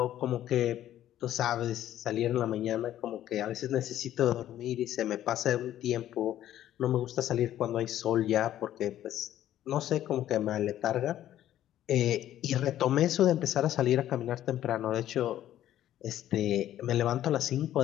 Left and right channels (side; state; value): right; quieter; 12.3 dB